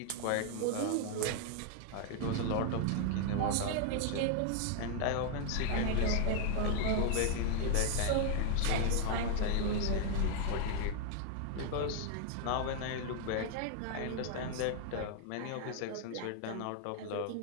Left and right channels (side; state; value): both; different; correlation 0.00